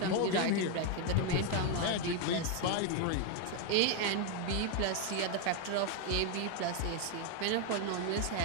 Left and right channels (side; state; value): both; different; correlation 0.01